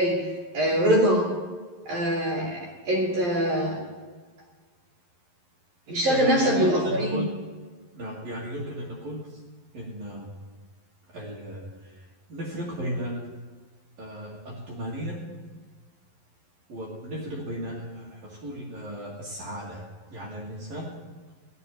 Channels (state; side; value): late; left; 11 ms